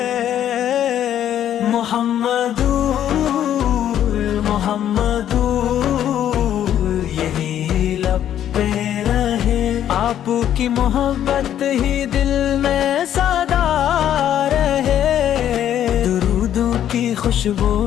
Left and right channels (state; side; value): quieter; right; 10.7 dB